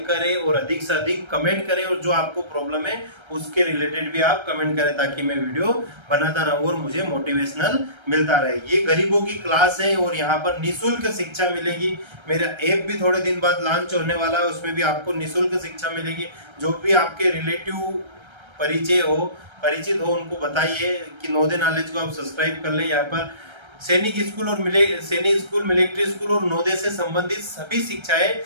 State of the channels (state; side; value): late; left; 1.3 ms